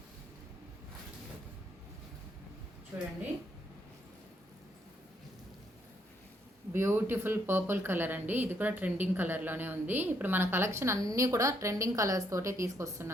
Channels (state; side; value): normal; both; correlation 0.73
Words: చూడండి బ్యూటిఫుల్ పర్పుల్ కలర్ అండి. ఇది కూడా ట్రెండింగ్ కలర్లోనే ఉంది. ఇప్పుడు మన కలెక్షన్ అన్నీ కూడా ట్రెండింగ్ కలర్స్ తోటే